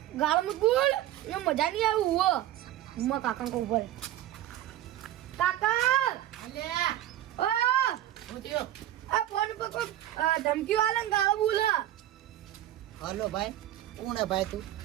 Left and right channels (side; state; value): left; quieter; 13.1 dB